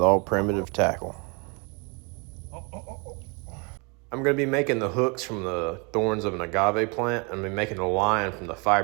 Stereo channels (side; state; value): left; quieter; 31.9 dB